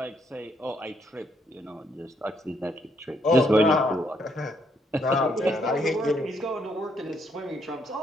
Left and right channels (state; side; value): normal; both; correlation 0.73